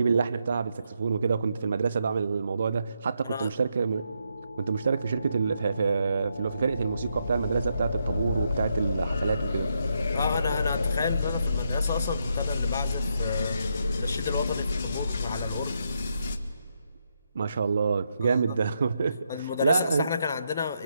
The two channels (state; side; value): inverted; both; correlation -0.80